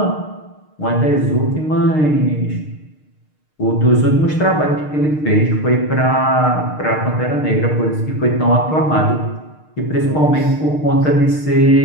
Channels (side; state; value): right; late; 6.5 ms